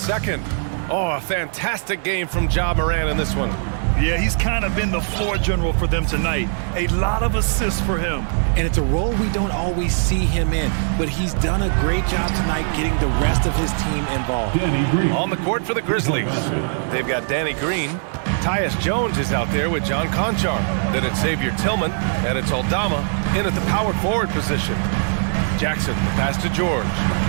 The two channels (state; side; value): silent; left; digital silence